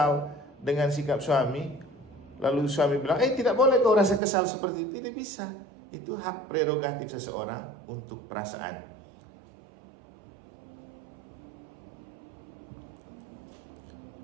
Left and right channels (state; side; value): drops out; left; at 4.2 s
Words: dengan sikap suami, lalu suami bilang, tidak boleh kau rasa kesal seperti itu. Tidak bisa. Itu hak prerogatif seseorang untuk perasaan.